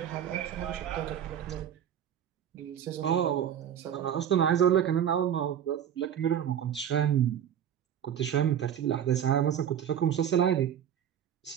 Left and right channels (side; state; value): left; quieter; 9.5 dB